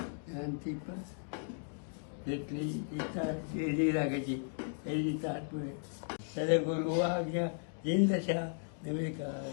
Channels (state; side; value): silent; right; digital silence